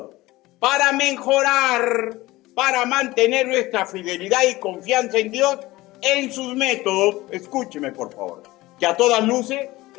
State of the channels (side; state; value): right; quieter; 18.9 dB